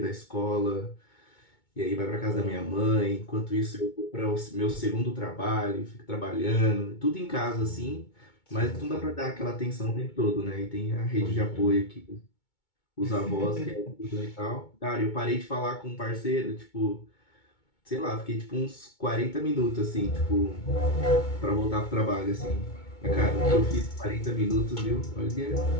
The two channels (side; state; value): right; late; 2.2 ms